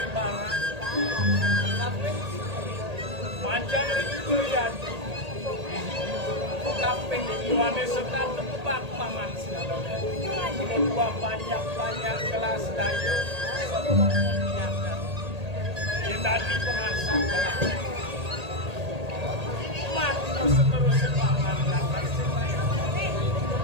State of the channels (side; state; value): left; late; 1.8 ms